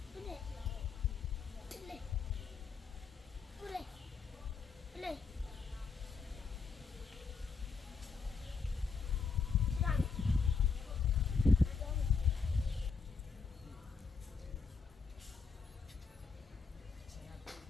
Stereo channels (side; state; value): right; quieter; 5.1 dB